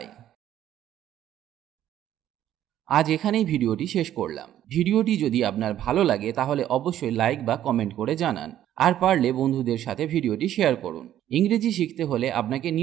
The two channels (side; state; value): left; quieter; 11.8 dB